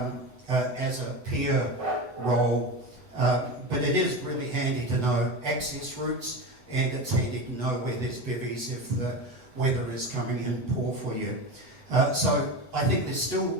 as a peer role. But it is really handy to know access routes, and it's handy to know where there's bivvies if the weather is coming in poor for you. So I think there's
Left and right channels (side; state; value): left; late; 8.0 ms